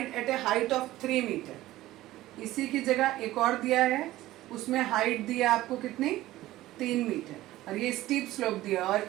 at a height of 3 metre. इसी की जगह एक और दिया है, उसमें हाइट दिया आपको कितनी? 3 मीटर और ये स्टीप स्लोप दिया और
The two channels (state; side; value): quieter; left; 16.1 dB